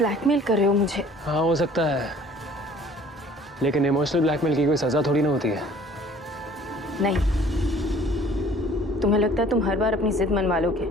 कर रहे हो मुझे? हाँ हो सकता है, लेकिन इमोशनल ब्लैकमेल की कोई सजा थोड़ी ना होती है। नहीं, तुम्हें लगता है तुम हर बार अपनी जिद मनवा लोगे,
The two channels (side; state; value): both; normal; correlation 0.53